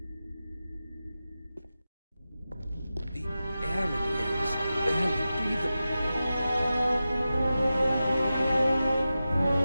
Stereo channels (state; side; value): inverted; both; correlation -0.93